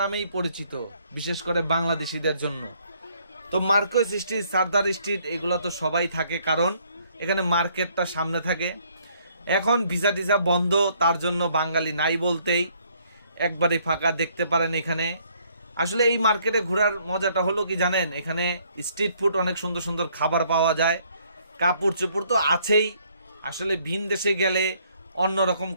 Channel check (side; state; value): both; inverted; correlation -0.66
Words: নামেই পরিচিত, বিশেষ করে বাংলাদেশিদের জন্য। তো মার্কেট স্ট্রিট, সারদার স্ট্রিট, এগুলো তো সবাই থাকে, কারণ এখানে মার্কেটটা সামনে থাকে। এখন ভিসা টিসা বন্ধ, তার জন্য বাঙালি নাই বলতেই একবারে ফাঁকা দেখতে পারেন এখানে। আসলে এই মার্কেটে ঘোরার মজাটা হলো কি জানেন, এখানে স্ট্রিট ফুড, অনেক সুন্দর সুন্দর খাবার পাওয়া যায়। কাপড় চোপড় তো আছেই। আসলে ভিন দেশে গেলে অন্যরকম